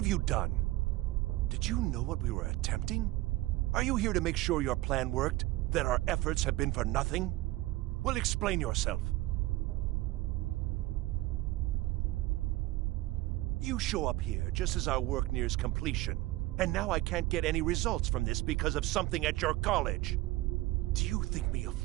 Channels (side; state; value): left; quieter; 18.6 dB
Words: you done? Did you know what we were attempting? Are you here to make sure your plan worked? That our efforts have been for nothing? Well, explain yourself. You show up here just as our work nears completion, and now I can't get any results from this because of something at your college. Do you think me a